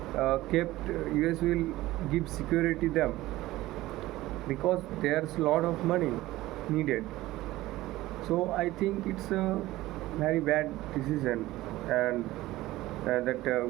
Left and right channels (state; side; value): quieter; left; 17.1 dB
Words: give security them, because there's a lot of money needed. So I think it's a very bad decision, and that